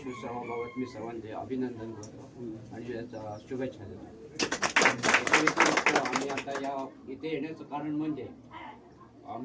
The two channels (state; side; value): identical; both; correlation 1.00